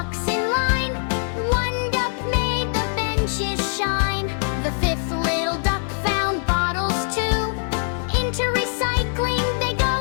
in line. One duck made the benches shine. The fifth little duck found bottles too. Into recycling they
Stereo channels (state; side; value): silent; right; digital silence